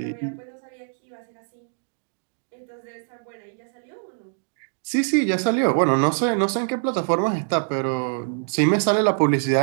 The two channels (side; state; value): left; silent; digital silence